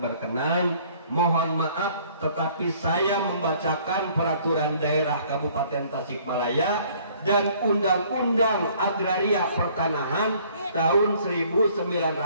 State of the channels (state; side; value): inverted; both; correlation -0.58